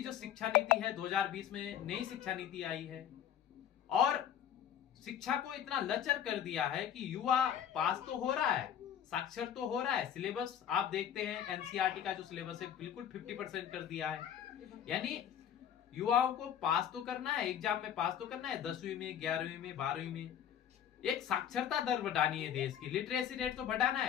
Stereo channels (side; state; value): right; quieter; 9.6 dB